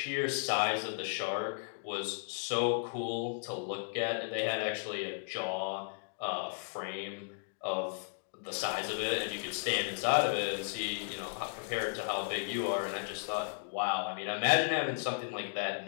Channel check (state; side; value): silent; right; digital silence